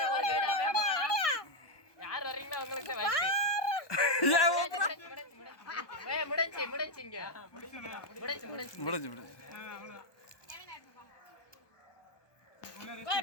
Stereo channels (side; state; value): right; late; 1.2 ms